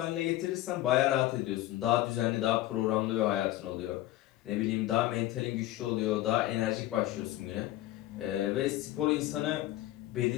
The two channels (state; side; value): quieter; right; 15.4 dB